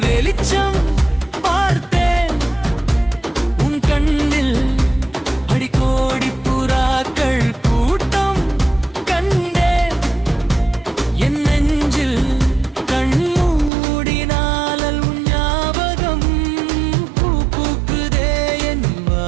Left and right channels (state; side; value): drops out; left; at 13.7 s